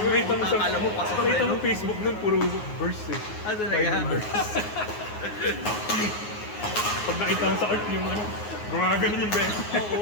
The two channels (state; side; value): late; right; 9.5 ms